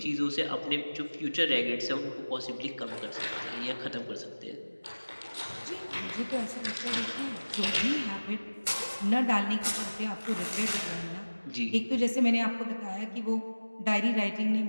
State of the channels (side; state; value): both; inverted; correlation -1.00